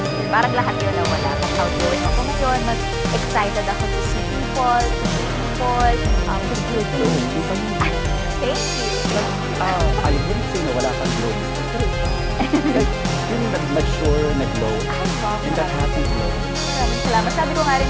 year. Parang lahat yun na wala. Mas outgoing ako ngayon, mas excited ako to see people, to feel things. Thank you. I wouldn't say na wala kang glow. Like, yung nag-mature, nag-glow. And that happy glow. Maraming salamat. Sabi ko nga rin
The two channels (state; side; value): identical; both; correlation 1.00